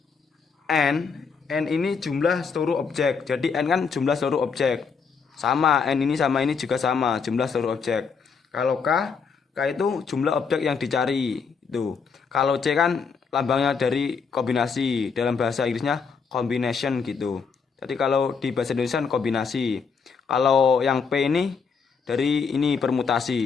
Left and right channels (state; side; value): quieter; right; 5.7 dB